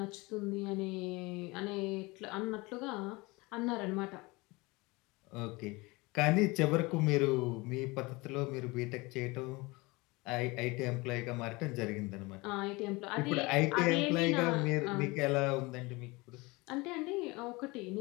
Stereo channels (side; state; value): right; quieter; 24.1 dB